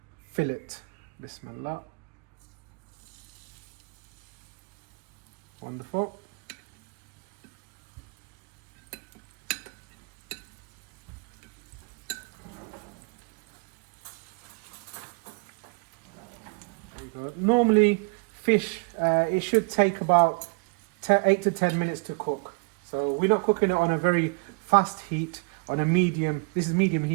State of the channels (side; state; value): left; quieter; 32.1 dB